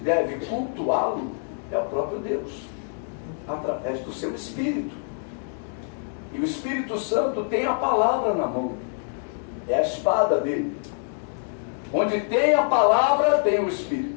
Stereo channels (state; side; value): silent; right; 61 dB below the other